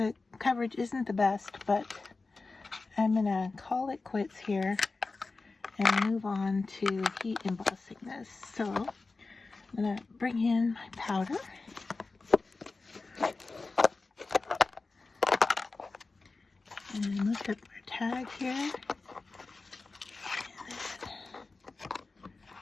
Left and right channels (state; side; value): quieter; right; 3.8 dB